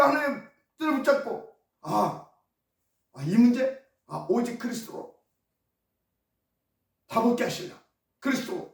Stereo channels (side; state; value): both; identical; correlation 1.00